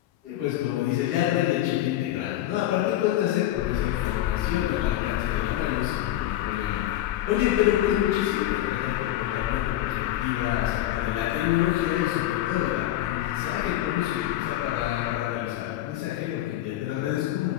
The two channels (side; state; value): right; quieter; 13.7 dB